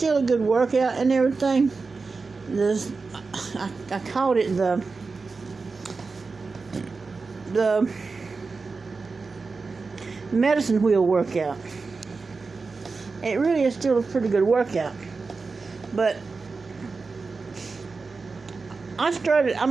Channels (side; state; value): left; quieter; 4.3 dB